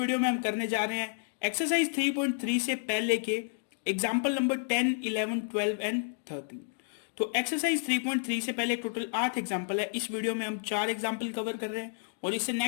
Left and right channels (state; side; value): silent; right; digital silence